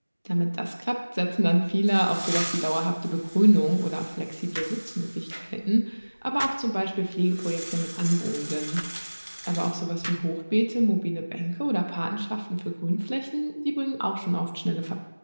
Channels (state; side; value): inverted; both; correlation -1.00